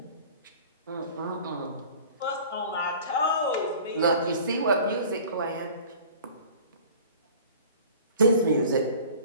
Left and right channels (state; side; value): inverted; both; correlation -0.43